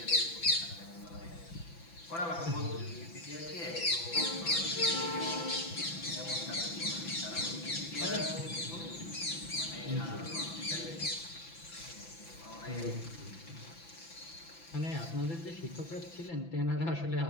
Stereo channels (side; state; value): right; late; 6.0 ms